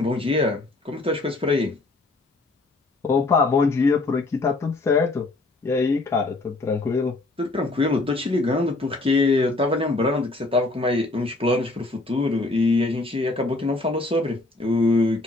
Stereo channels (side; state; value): right; quieter; 3.1 dB